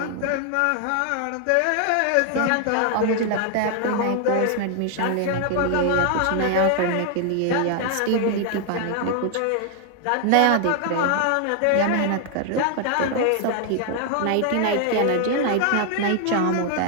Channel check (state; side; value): different; both; correlation 0.00